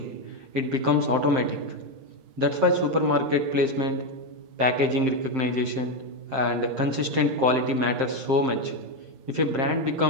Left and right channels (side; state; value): left; late; 7.6 ms